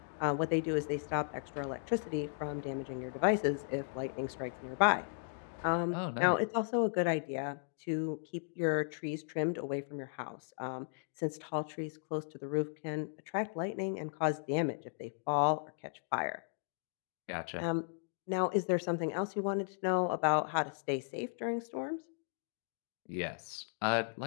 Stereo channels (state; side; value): silent; right; digital silence